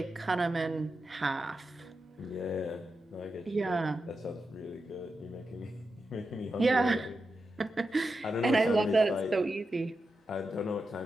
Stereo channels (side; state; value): both; normal; correlation 0.89